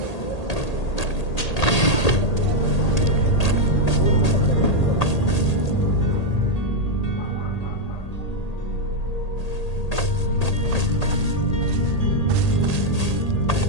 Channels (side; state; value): right; late; 1.8 ms